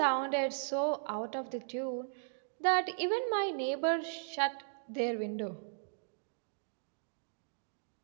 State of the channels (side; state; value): left; silent; digital silence